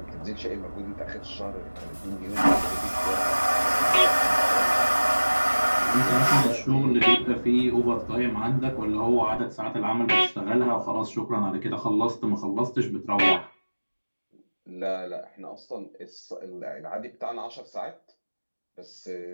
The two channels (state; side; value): inverted; both; correlation -1.00